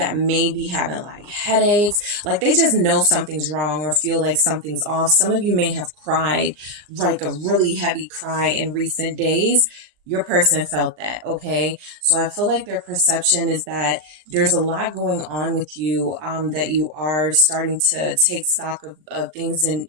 may be having like headaches, like they just know something's wrong or feel like something's off. Some of you may have cried like a really heavy cry in recent days. Your person felt that. Okay. So I feel like their perception is that there's a lot going on with you, that you are starting to take stock of things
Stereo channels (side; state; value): left; late; 39 ms